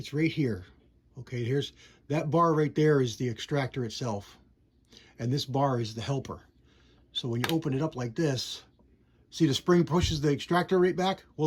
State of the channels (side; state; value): both; identical; correlation 1.00